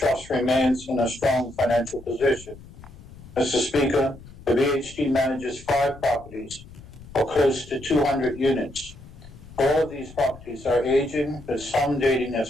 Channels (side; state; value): left; noise; rumble, 18 dB below the sound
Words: remains in a strong financial position. Mr. Speaker, the BHT manages 5 properties, or close to 200 units. All of these properties are aging, with some dating